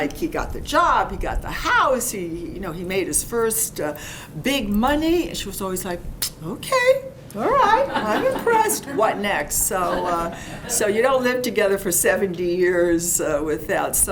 he got the job, he got the house, he made his first big money, and she was always like, okay. All right, I'm impressed. What next? So you don't live together for 70 years without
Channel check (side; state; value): both; identical; correlation 1.00